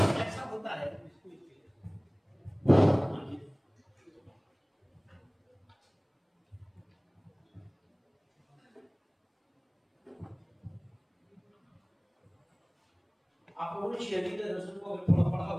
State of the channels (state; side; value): identical; both; correlation 1.00